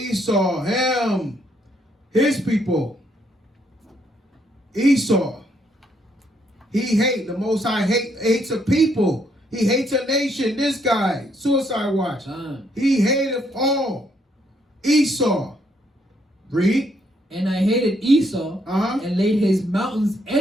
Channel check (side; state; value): both; normal; correlation 0.72